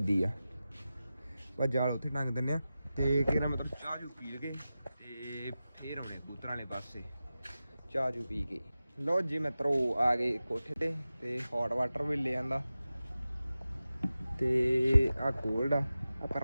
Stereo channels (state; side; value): inverted; both; correlation -0.94